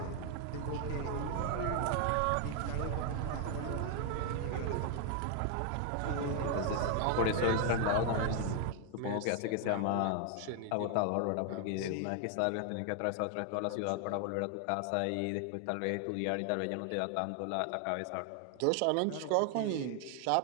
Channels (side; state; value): both; different; correlation 0.00